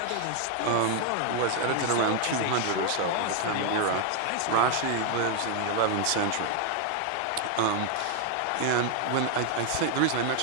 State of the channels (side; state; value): both; different; correlation 0.00